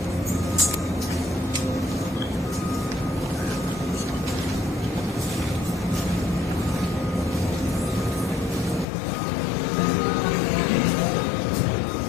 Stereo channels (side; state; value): right; drops out; at 8.8 s